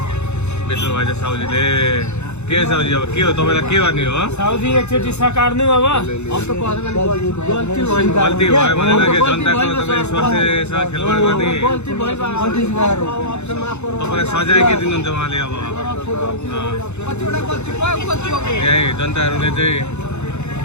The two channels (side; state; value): right; late; 0.82 ms